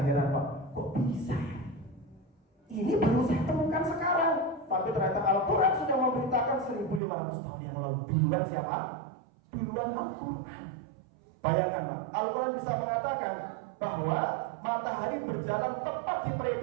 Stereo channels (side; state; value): left; drops out; at 7.0 s